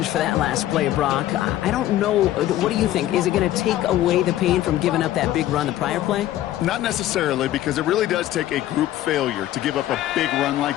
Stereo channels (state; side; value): quieter; right; 13.7 dB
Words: for that last play, Brock. I don't know. What do you think? Is it going to take away the pain from giving up that big run the prior play? Not necessarily, because it really does take a group failure to give up a big run